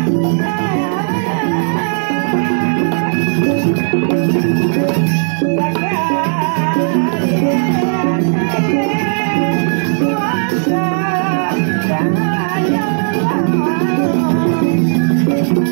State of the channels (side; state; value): left; silent; digital silence